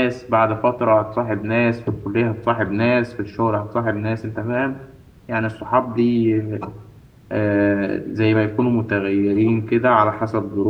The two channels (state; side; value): identical; both; correlation 1.00